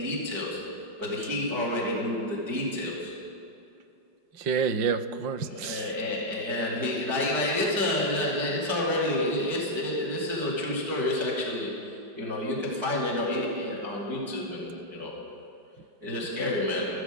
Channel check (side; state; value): left; late; 5.1 ms